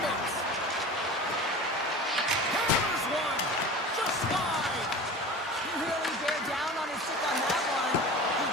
Hammers one. Just wide. He really bear down on his stick on that one. He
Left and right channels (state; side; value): normal; both; correlation 0.36